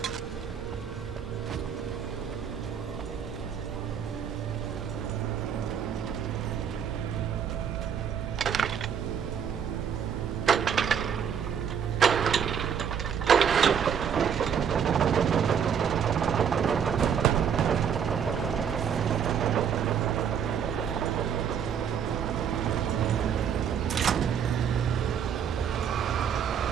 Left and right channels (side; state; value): left; quieter; 7.8 dB